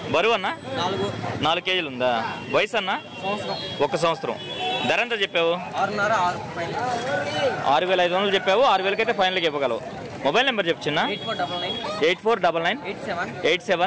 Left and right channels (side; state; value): both; identical; correlation 1.00